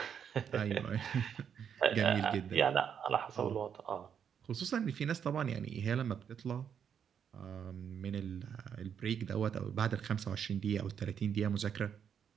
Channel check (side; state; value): left; quieter; 7.9 dB